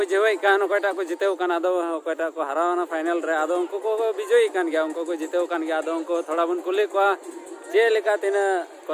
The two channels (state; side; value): identical; both; correlation 1.00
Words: कान ओकटा को जितेव कान आदो ओकटा को हरावना फाइनल रे आदो उनको को विजयी कान गया उनको को जितेव कान गया आदो उनको थोड़ा बन कुले को जे लेका तिना